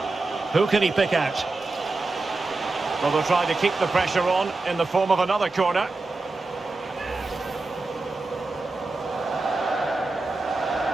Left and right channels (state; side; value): quieter; left; 3.4 dB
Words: Who can he pick out? Well, they'll try to keep the pressure on in the form of another corner.